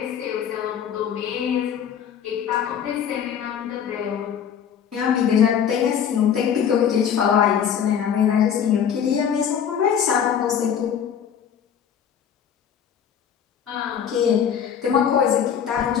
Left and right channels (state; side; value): quieter; right; 8.3 dB